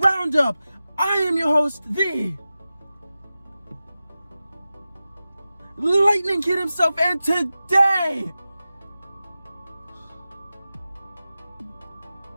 I am your host, the Lightning Kid himself, and today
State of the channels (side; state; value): both; inverted; correlation -0.94